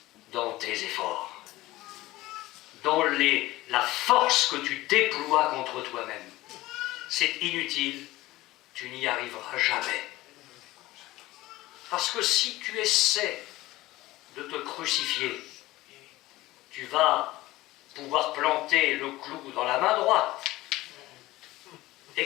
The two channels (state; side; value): quieter; right; 17.9 dB